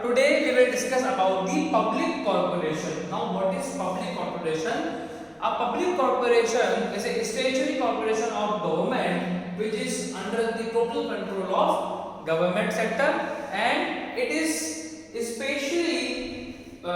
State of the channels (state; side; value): identical; both; correlation 1.00